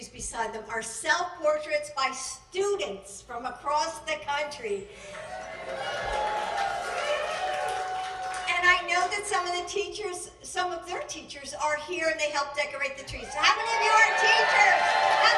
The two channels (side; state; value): both; identical; correlation 1.00